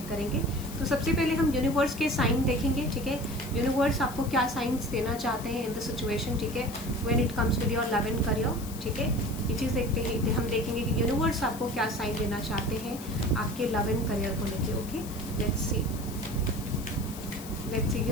करेंगे। तो सबसे पहले हम यूनिवर्स के साइन देखेंगे, ठीक है। यूनिवर्स आपको क्या साइंस देना चाहते हैं इन द सिचुएशन, ठीक है, when it comes with your love and career, ठीक है। ये चीज़ देखते हैं, हम देखेंगे कि यूनिवर्स आपको क्या साइन देना चाहते हैं आपके लव एंड करियर को लेके। ओके, लेट्स सी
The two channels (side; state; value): left; noise; hiss, 14 dB below the sound